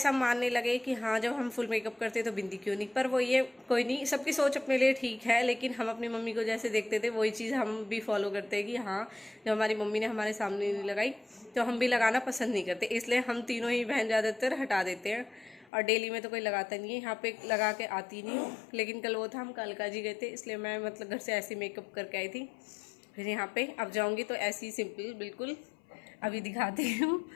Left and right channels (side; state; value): right; drops out; at 15.7 s